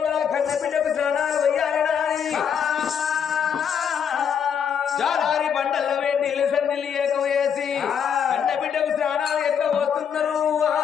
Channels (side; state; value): right; quieter; 7.7 dB